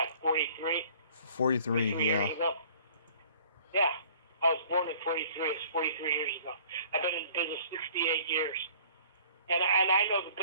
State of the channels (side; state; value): both; inverted; correlation -0.53